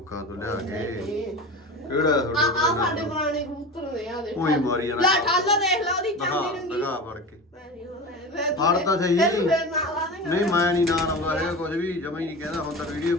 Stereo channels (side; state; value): both; normal; correlation 0.29